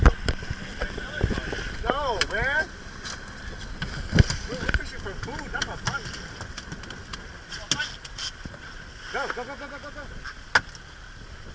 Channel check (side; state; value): both; identical; correlation 1.00